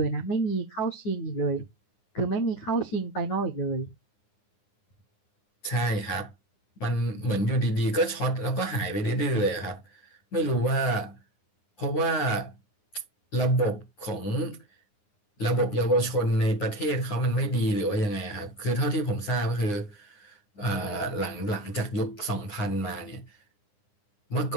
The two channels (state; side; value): late; right; 9.8 ms